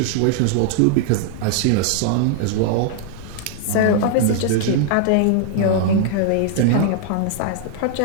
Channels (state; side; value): different; both; correlation -0.01